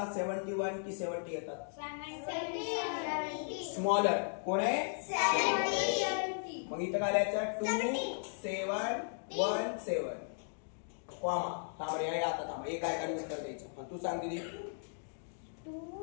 71 की 70 येतात? स्मॉलर कोण आहे? 70. मग इथं काय लिहायचं? 2717 कॉमा. थांब रे आता थांब. एक काय उत्तर द्यायचं. तू सांग दीदी.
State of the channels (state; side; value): silent; right; digital silence